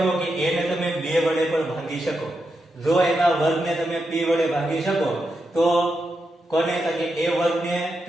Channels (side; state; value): both; normal; correlation 0.86